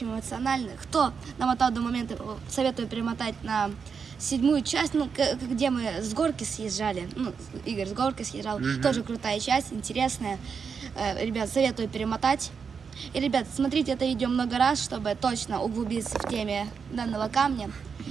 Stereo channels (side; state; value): left; quieter; 6.0 dB